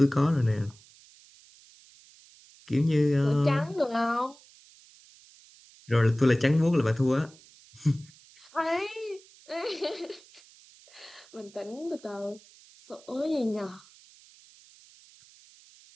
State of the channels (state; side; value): noise; right; hiss, 25 dB below the sound